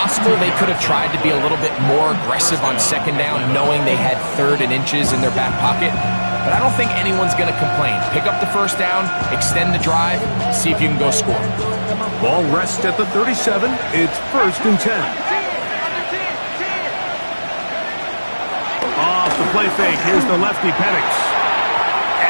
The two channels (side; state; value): both; inverted; correlation -1.00